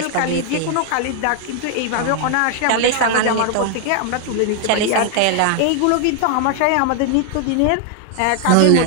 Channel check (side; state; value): both; different; correlation 0.00